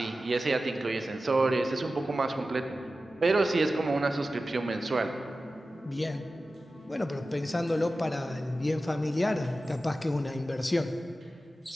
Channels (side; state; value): both; normal; correlation 0.94